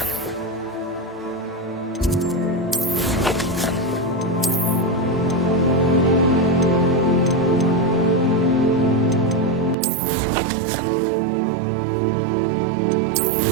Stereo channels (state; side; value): drops out; left; at 9.8 s